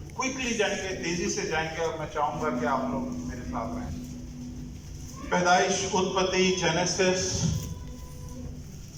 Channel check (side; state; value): both; identical; correlation 1.00